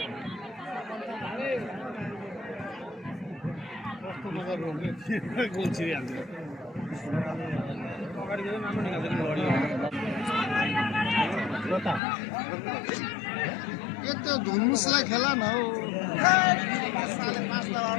यो त धुम्मुसलाई खेला न हौ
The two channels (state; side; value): drops out; right; at 12.0 s